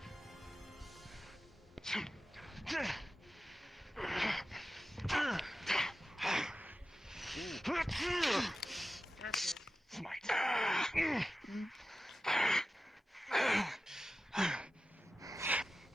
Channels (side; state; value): both; normal; correlation 0.93